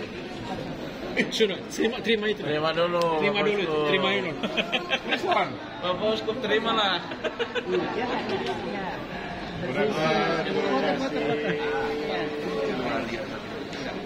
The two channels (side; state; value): both; identical; correlation 1.00